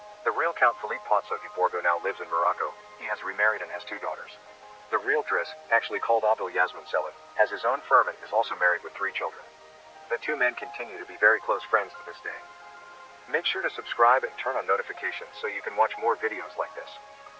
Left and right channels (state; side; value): identical; both; correlation 1.00